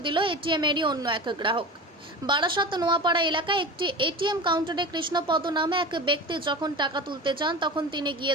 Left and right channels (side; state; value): both; normal; correlation 0.31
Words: দিল এটিএমেরই অন্য এক গ্রাহক। বারাসাত নোয়াপাড়া এলাকায় একটি এটিএম কাউন্টারে কৃষ্ণপদ নামে এক ব্যক্তি যখন টাকা তুলতে যান তখন তিনি গিয়ে